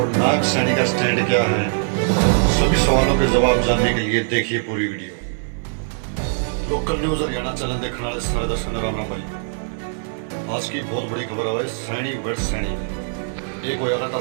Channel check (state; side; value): silent; left; digital silence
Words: नायब सैनी का स्टैंड क्या है? सभी सवालों के जवाब जानने के लिए देखिए पूरी video. Local news Haryana channel देखने वाले सारे दर्शकों को राम राम भाई। आज की बहुत बड़ी खबर है सैनी वर्सेस सैनी। एक होया था